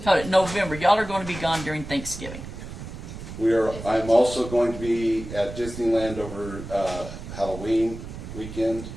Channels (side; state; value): right; noise; rumble, 11 dB below the sound